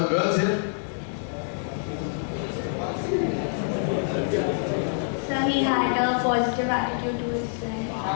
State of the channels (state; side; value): silent; right; digital silence